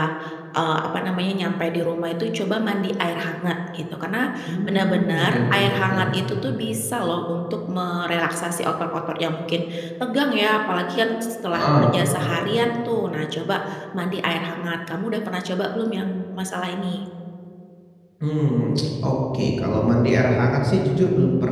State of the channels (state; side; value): identical; both; correlation 1.00